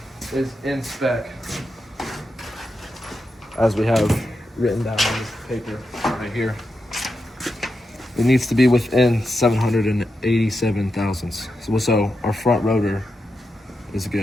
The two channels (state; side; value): normal; both; correlation 0.87